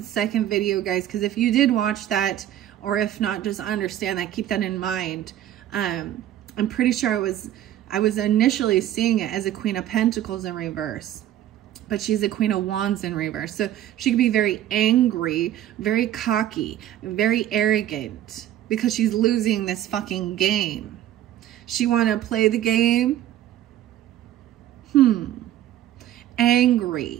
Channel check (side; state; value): left; quieter; 12.3 dB